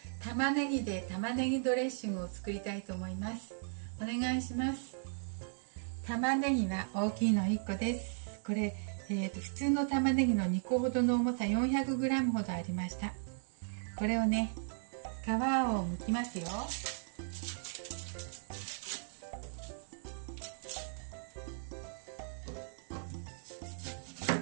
玉ねぎで玉ねぎドレッシングを作りたいと思います。お願いします。玉ねぎは大きいの1個です。これ、普通の玉ねぎの2個ほどの重さ 400g ほどありました。これをね、皮を剥きますよ。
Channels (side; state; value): left; silent; digital silence